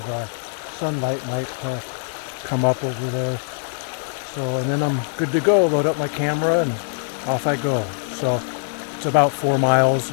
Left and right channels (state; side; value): silent; right; 60 dB below the other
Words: sunlight might come up over there. So, and then I'm good to go, load up my camera and off I go. So it's about 4 miles